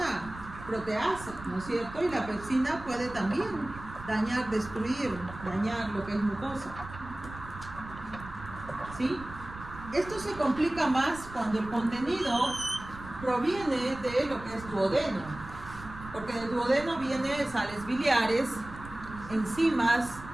proteasa, ¿no es cierto? Y la pepsina puede también dañar, destruir, dañar lo que es mucosa. ¿Sí? Esto se complica más cuando el contenido proviene de lo que es duodeno, porque del duodeno vienen sales biliares, enzimas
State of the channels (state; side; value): noise; right; rumble, 14 dB below the sound